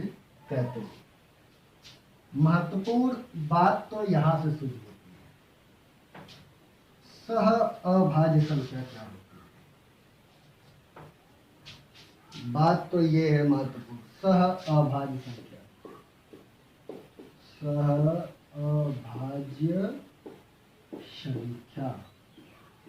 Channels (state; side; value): identical; both; correlation 1.00